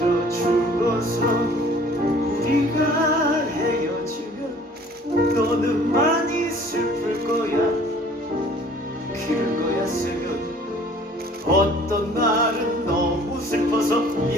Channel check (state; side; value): normal; both; correlation 0.52